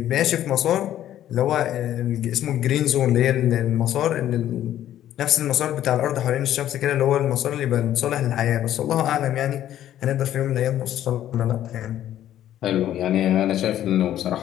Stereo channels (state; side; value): quieter; right; 11.9 dB